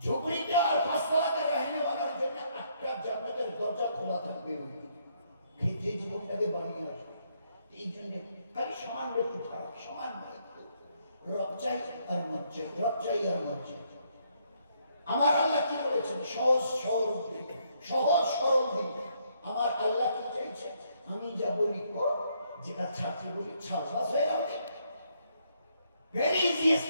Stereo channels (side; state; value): both; inverted; correlation -0.71